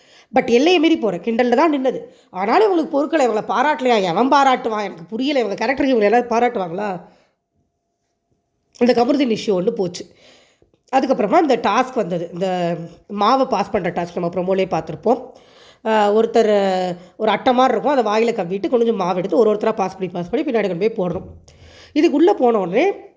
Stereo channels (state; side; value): identical; both; correlation 1.00